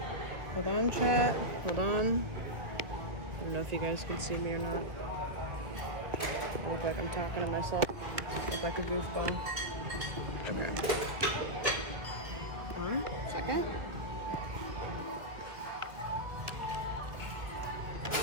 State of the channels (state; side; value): late; left; 1.6 ms